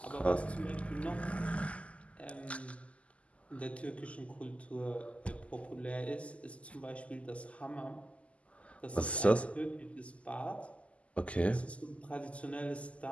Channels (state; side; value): late; right; 0.062 ms